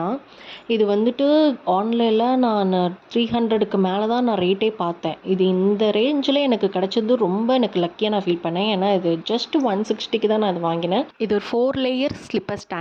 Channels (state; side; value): identical; both; correlation 1.00